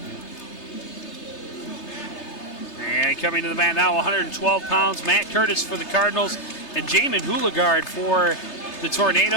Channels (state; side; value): late; right; 3.3 ms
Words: And coming to the mat now, 112 pounds, Matt Curtis for the Cardinals and Jamin Houligard for the